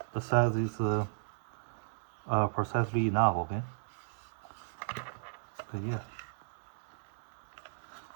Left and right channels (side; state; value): left; silent; digital silence